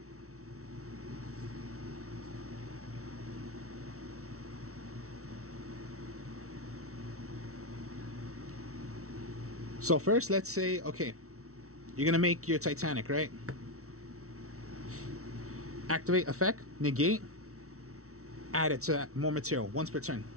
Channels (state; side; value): late; left; 0.64 ms